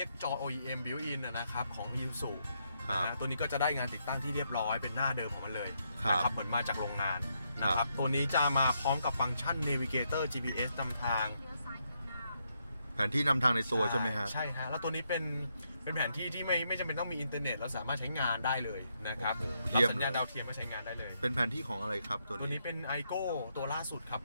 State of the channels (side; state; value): both; inverted; correlation -0.78